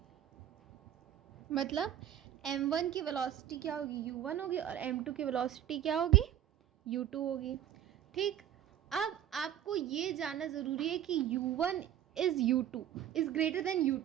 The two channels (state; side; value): quieter; left; 11.0 dB